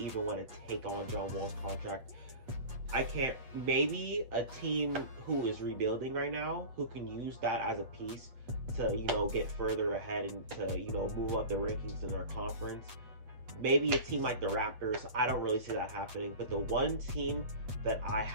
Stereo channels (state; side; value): late; left; 8.2 ms